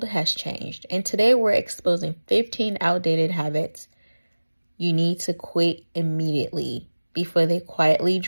has changed, and today we're exposing 15 outdated habits you need to quit immediately before they quietly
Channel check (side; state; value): both; inverted; correlation -1.00